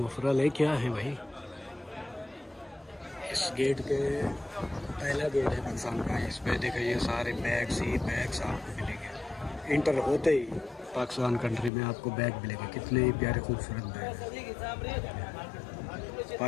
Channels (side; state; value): right; drops out; at 11.7 s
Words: है, क्या है भाई। इस गेट के पहला गेट है पाकिस्तान का। इस पे देखिए ये सारे बैग्स ही बैग्स आपको मिलेंगे। इंटर होते ही पाकिस्तान कंट्री में आपको बैग मिलेंगे, कितने ही प्यारे खूबसूरत बैग हैं।